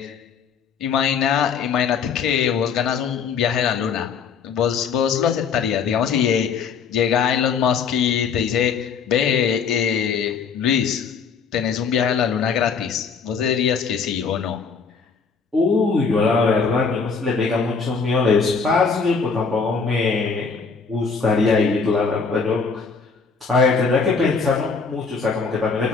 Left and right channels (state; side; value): quieter; right; 5.6 dB